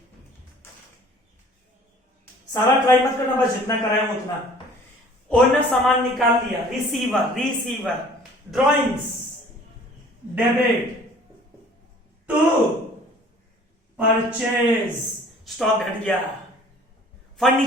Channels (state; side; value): normal; both; correlation 0.51